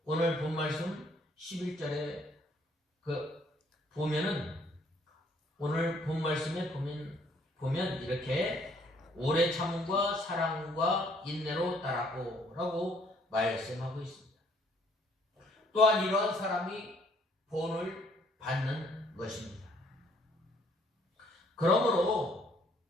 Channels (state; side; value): normal; both; correlation 0.64